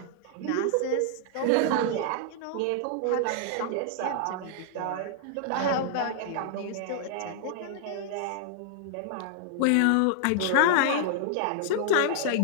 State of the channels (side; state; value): both; different; correlation -0.01